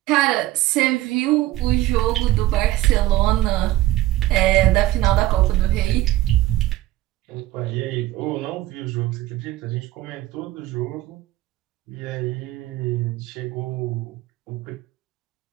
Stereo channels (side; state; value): left; quieter; 16.0 dB